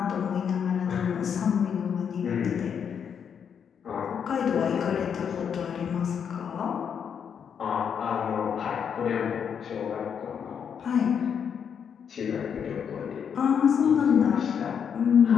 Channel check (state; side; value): quieter; right; 7.5 dB